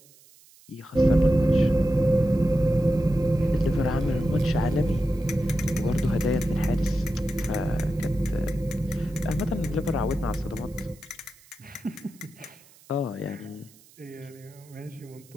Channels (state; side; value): noise; right; hiss, 27 dB below the sound